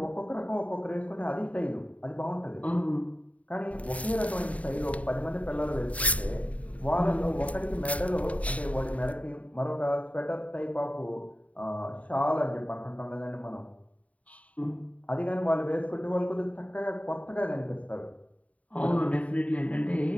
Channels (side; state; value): right; late; 0.068 ms